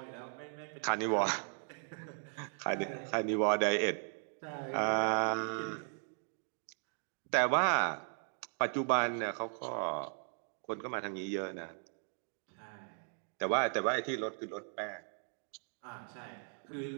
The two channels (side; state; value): left; silent; 53 dB below the other